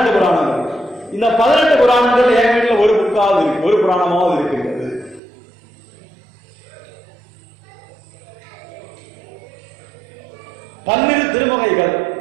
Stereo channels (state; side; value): drops out; left; at 5.2 s